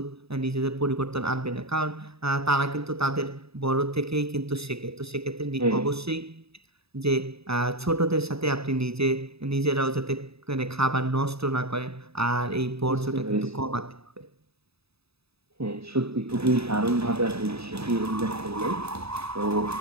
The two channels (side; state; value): left; late; 0.78 ms